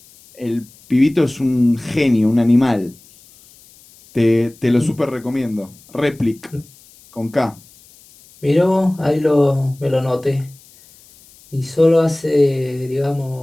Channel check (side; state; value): left; noise; hiss, 26 dB below the sound